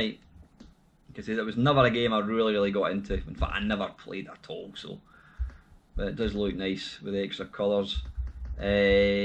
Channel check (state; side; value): identical; both; correlation 1.00